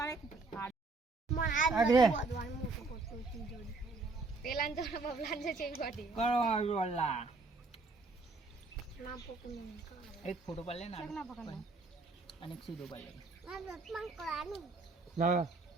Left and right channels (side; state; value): left; quieter; 3.6 dB